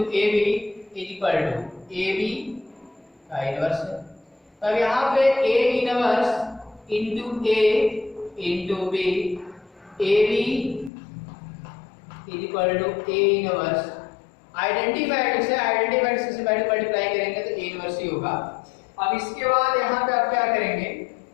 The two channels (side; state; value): right; drops out; at 10.9 s